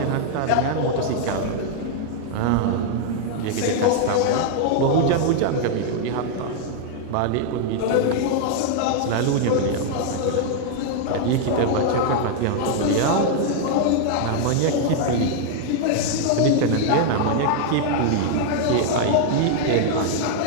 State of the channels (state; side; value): different; both; correlation 0.00